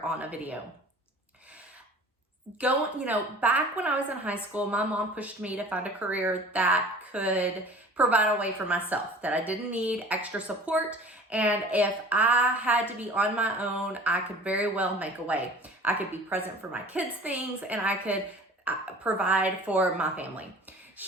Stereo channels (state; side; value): normal; both; correlation 0.44